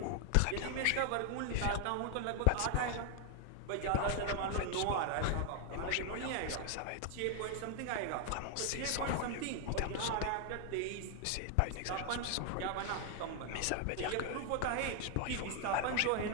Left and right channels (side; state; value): both; different; correlation 0.00